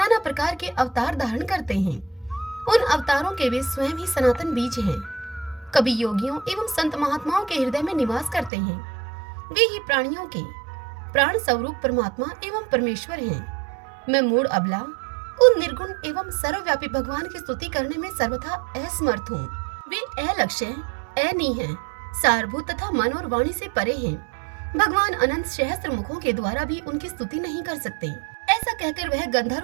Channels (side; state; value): left; drops out; at 8.5 s